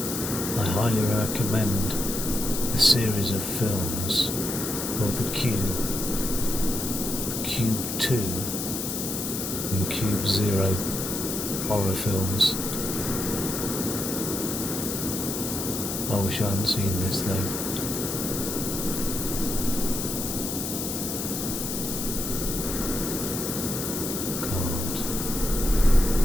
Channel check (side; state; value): left; noise; hiss, 4 dB below the sound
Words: I highly recommend a series of films called The Cube, The Cube 2 and Cube 0 horror films. I wish I hadn't seen this though. God.